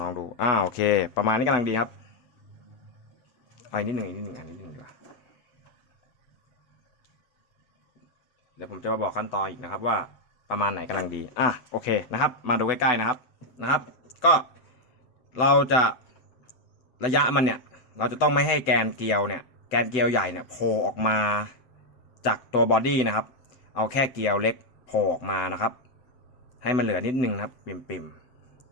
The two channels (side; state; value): right; late; 7.9 ms